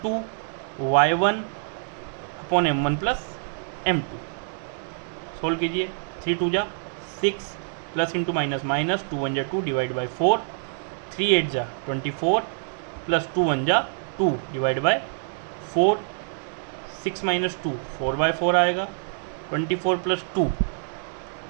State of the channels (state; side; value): silent; left; digital silence